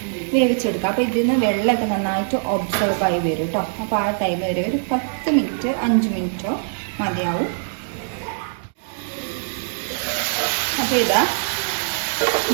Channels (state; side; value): silent; left; digital silence